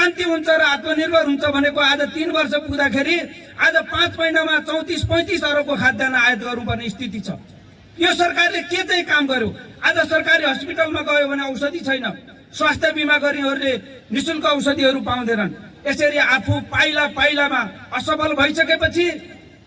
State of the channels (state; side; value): identical; both; correlation 1.00